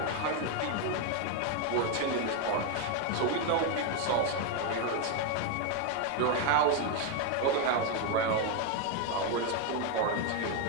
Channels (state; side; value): different; both; correlation 0.01